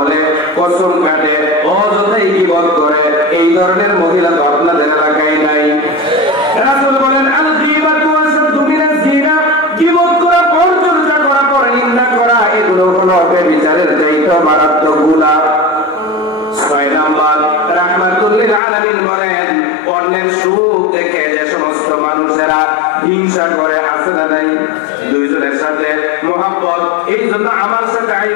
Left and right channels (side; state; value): right; drops out; at 18.6 s